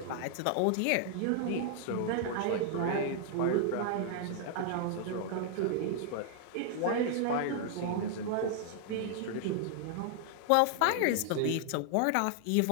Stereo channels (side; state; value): both; different; correlation 0.00